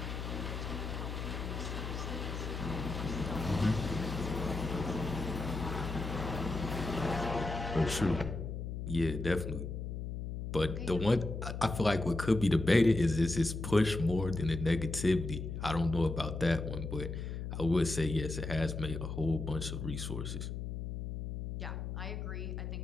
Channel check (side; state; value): left; noise; hum, 5 dB below the sound